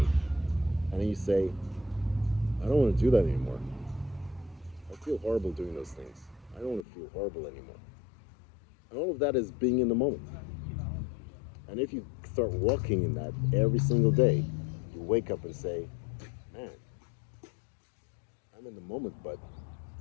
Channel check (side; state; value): right; drops out; at 6.9 s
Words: and then you say, I don't want to do that anymore. I feel horrible doing those things. I don't want to feel horrible anymore. And all of that is being in the moment. And if you start walking in that every single day, you wake up and say, man, I'm in the moment, but